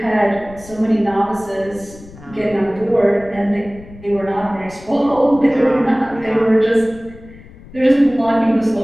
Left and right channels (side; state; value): left; noise; rumble, 20 dB below the sound